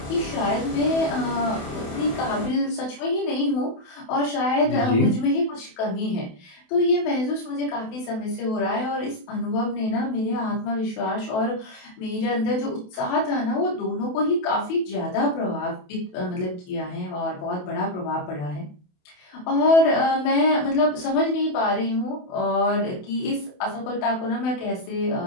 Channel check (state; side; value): late; right; 28 ms